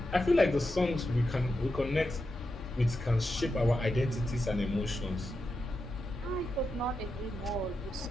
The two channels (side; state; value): both; normal; correlation 0.88